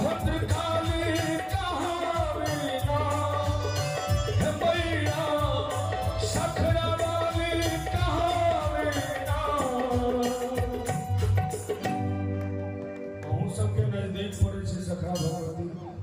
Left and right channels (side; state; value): both; identical; correlation 1.00